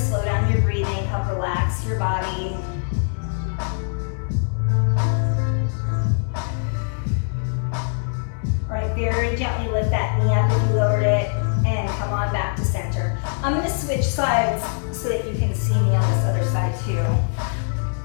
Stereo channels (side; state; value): right; silent; digital silence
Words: down your breathing, help relax your body. All right, very gently lift that knee up if you lowered it, and come on back to center. I'm gonna switch sides so that you can see me on this other side too.